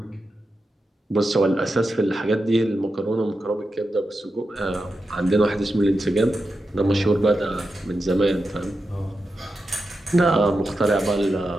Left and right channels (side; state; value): both; normal; correlation 0.89